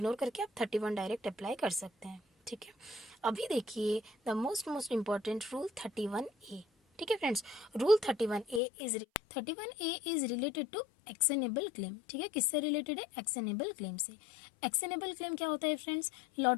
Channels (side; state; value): right; drops out; at 8.6 s